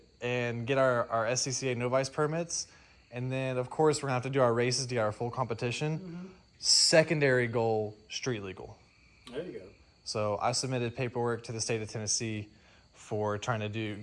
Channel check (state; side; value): identical; both; correlation 1.00